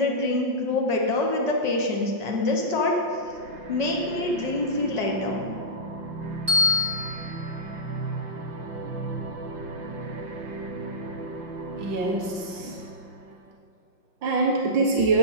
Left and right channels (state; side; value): late; left; 5.6 ms